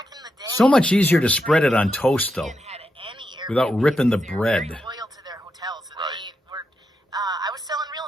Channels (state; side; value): normal; both; correlation 0.85